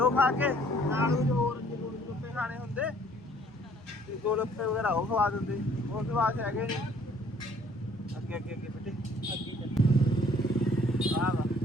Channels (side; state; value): both; normal; correlation 0.59